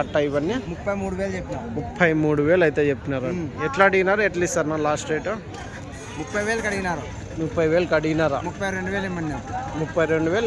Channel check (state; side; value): identical; both; correlation 1.00